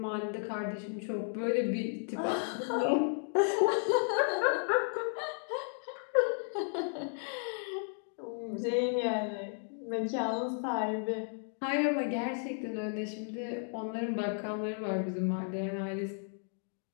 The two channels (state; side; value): silent; right; 55 dB below the other